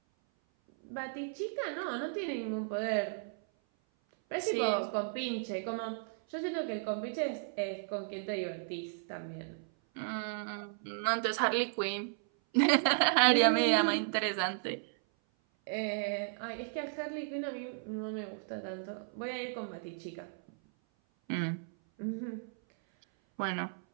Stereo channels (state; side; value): silent; left; 55 dB below the other